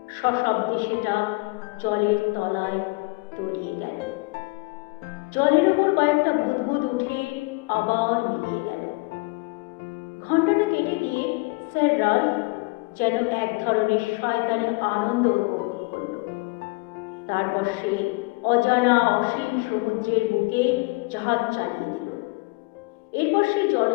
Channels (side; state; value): right; quieter; 26.4 dB